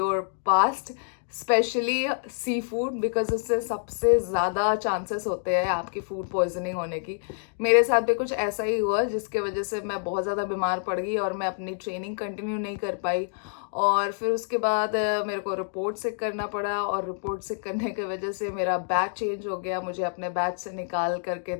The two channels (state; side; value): silent; right; digital silence